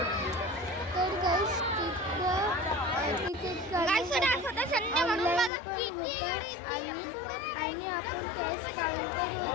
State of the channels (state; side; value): drops out; right; at 5.5 s